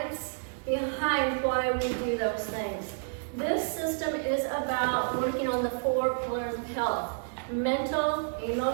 behind why we do those things. This system is about working on the 4 pillars of health: mental,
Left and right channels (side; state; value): left; silent; digital silence